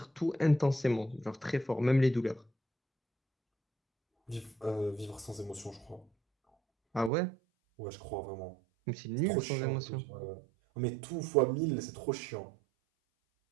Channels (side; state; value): left; drops out; at 7.1 s